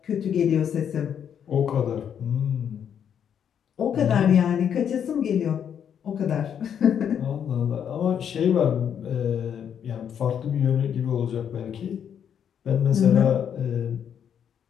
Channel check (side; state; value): right; quieter; 8.5 dB